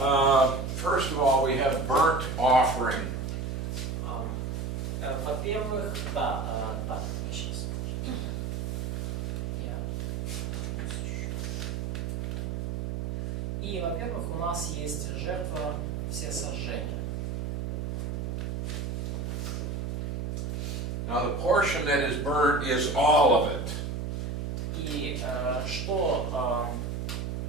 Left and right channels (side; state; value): right; noise; hum, 2 dB below the sound